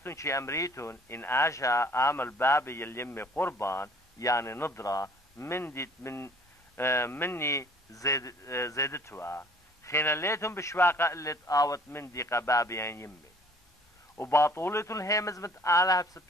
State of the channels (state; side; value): normal; both; correlation 0.55